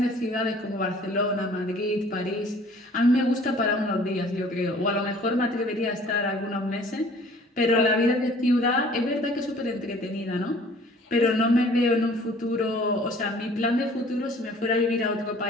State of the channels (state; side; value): normal; both; correlation 0.52